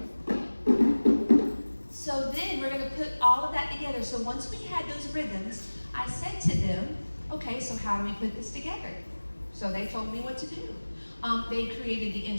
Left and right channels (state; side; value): inverted; both; correlation -1.00